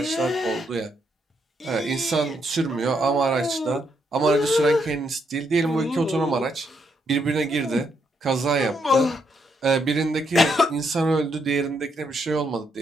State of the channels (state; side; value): normal; both; correlation 0.76